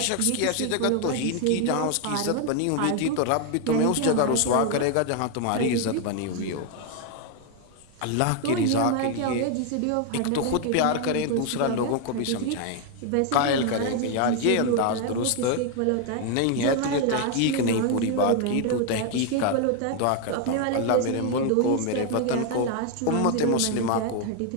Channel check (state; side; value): different; both; correlation 0.01